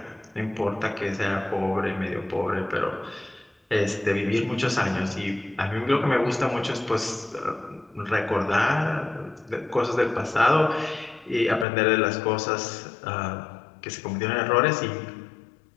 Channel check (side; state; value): right; drops out; at 11.7 s